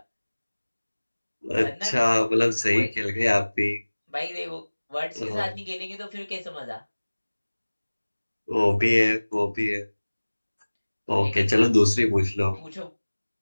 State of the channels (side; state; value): both; inverted; correlation -1.00